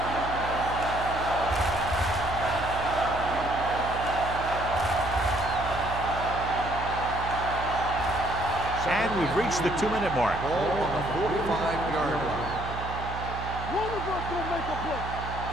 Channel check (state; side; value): noise; right; hum, 8 dB below the sound